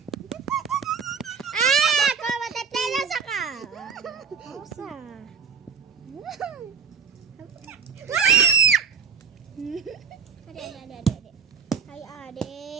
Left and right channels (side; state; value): left; quieter; 6.3 dB